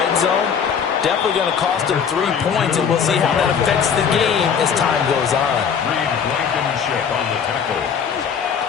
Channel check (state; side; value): quieter; right; 7.1 dB